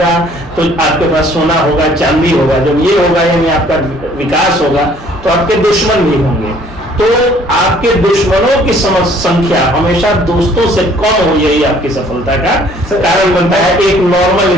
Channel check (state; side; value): normal; both; correlation 0.58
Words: तो आपके पास सोना होगा, चांदी होगा। जब ये होगा यानी आपका विकास होगा तो आपके दुश्मन भी होंगे। तो आपके दुश्मनों की संख्या हमेशा दोस्तों से कम हो, यही आपकी सफलता का कारण बनता है एक नॉर्मल